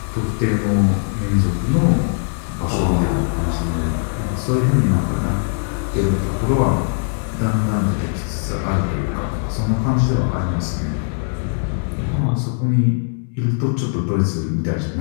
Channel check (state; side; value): silent; right; 63 dB below the other